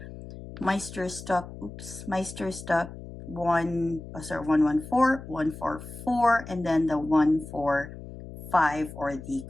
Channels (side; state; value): left; noise; hum, 13 dB below the sound